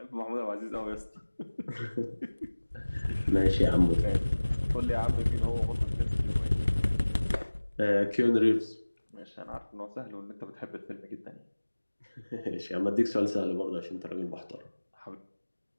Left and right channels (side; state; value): both; inverted; correlation -1.00